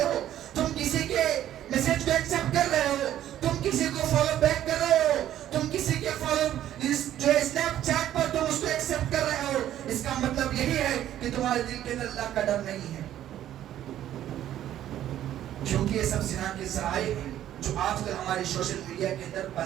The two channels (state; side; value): quieter; left; 12.0 dB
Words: ہو، تم کسی کے میسج کو ایکسپٹ کر رہے ہو، تم کسی کو فالو بیک کر رہے ہو، تم کسی کے فالو جو اسنیپ چیٹ پر تم اس کو ایکسپٹ کر رہے ہو، اس کا مطلب یہی ہے کہ تمہارے دل کے اندر اللہ کا ڈر نہیں ہے۔ کیونکہ یہ سب زنا کے ذرائع ہیں جو آج کل ہمارے سوشل میڈیا کے اندر